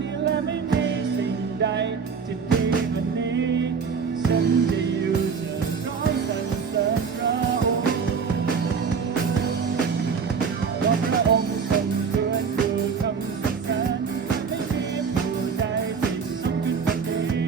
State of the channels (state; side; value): quieter; left; 5.9 dB